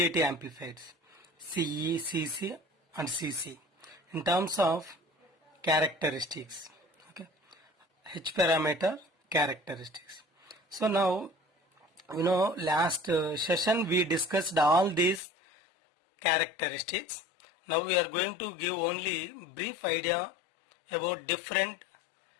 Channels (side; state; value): right; drops out; at 15.2 s